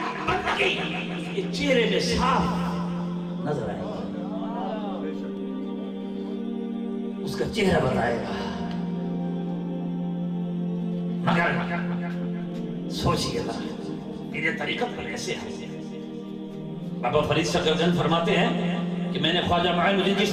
بندگی اس کے چہرے میں صاف نظر آئے گا، اس کا چہرہ بتائے گا۔ مگر سوچئے گا میرے طریقت پر ایسے ہے۔ بابا فرید شکرجن فرماتے ہیں کہ میں نے خواجہ معین الدین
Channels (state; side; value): identical; both; correlation 1.00